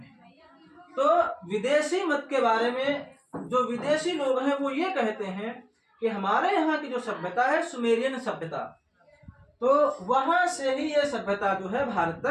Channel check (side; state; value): both; identical; correlation 1.00